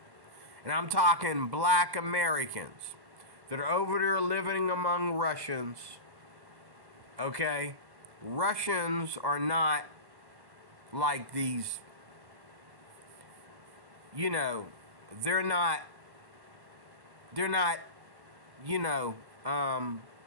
And I'm talking black Americans that are over there living among Russians. Okay? Russians are not like these, you know, they're not, you know,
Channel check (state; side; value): late; left; 1.1 ms